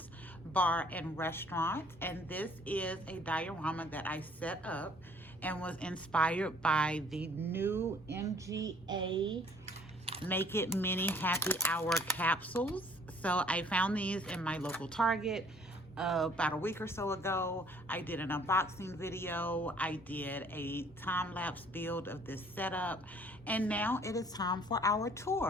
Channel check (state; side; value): normal; both; correlation 0.58